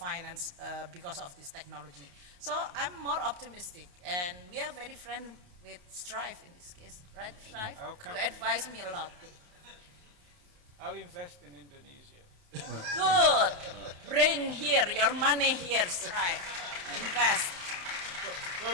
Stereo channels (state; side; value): late; left; 28 ms